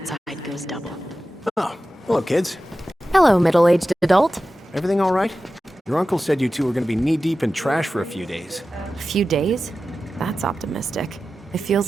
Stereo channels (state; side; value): normal; both; correlation 0.94